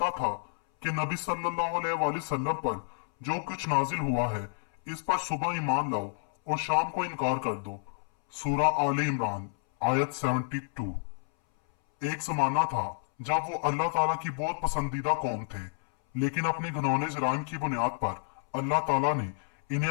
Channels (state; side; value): silent; right; 58 dB below the other